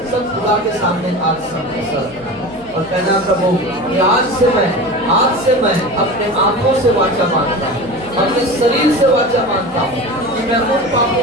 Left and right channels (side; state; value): left; noise; hum, 24 dB below the sound